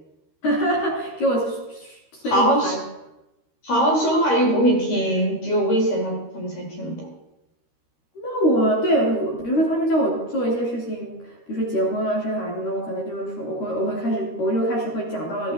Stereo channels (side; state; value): right; late; 13 ms